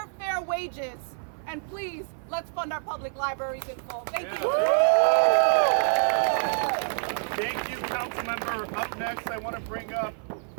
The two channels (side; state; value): left; silent; 58 dB below the other